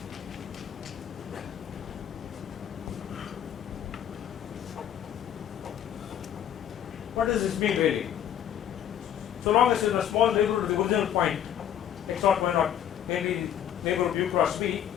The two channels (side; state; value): right; quieter; 10.0 dB